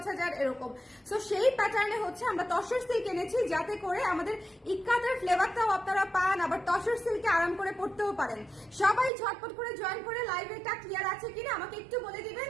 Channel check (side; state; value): left; drops out; at 9.1 s